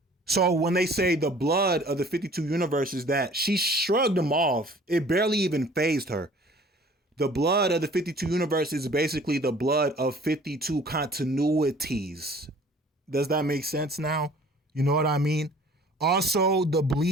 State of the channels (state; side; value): normal; both; correlation 0.51